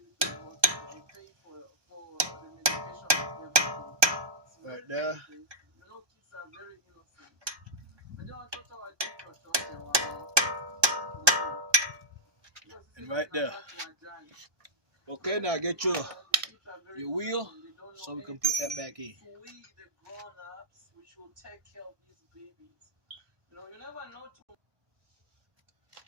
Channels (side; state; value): left; late; 1.2 ms